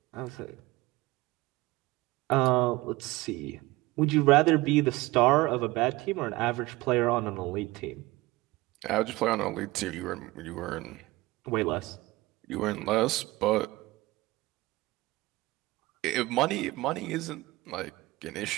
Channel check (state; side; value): quieter; left; 20.2 dB